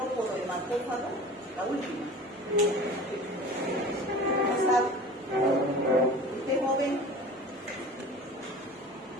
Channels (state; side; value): normal; both; correlation 0.40